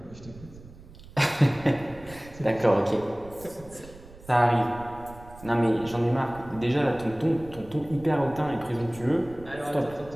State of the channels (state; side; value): noise; right; rumble, 19 dB below the sound